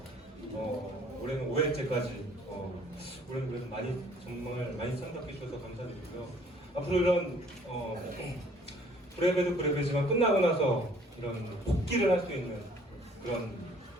올해는 5회째까지 올해는 그래도 정말 많이 참석해 주셔서 감사드리고요. 앞으로 이런 브레베도 브레베지만 끝나고 나서 이런 복귀를 할 수 있는 그런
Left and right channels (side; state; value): both; normal; correlation 0.58